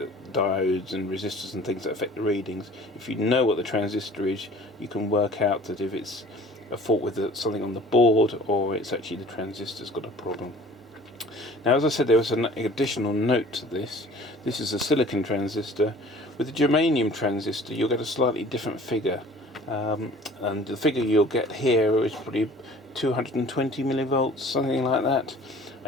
diodes and resistors and things that affect the readings. If you know what the transistor is, you can work out that if it's a fault with something on the board, or it's actually the transistor's got a problem. Now, as I said, there was an additional note to this. This is a silicon transistor. With a germanium transistor, you'll get a slightly different figure, and the figure you'll get here is probably 220 millivolts, something like that,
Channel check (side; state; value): both; normal; correlation 0.48